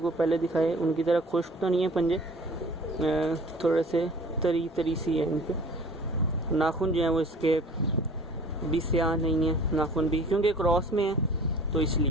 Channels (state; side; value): normal; both; correlation 0.47